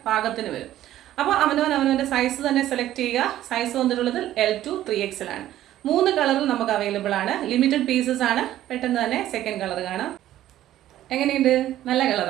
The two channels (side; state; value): left; quieter; 13.2 dB